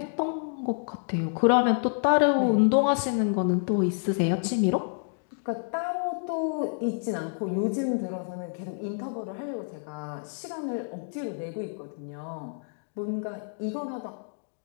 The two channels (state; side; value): silent; right; digital silence